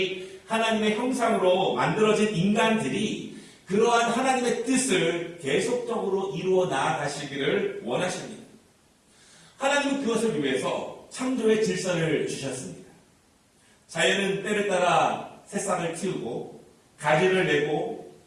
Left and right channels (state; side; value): identical; both; correlation 1.00